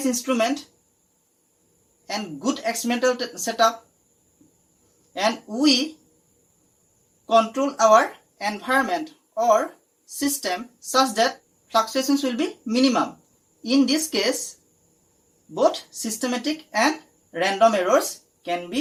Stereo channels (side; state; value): both; identical; correlation 1.00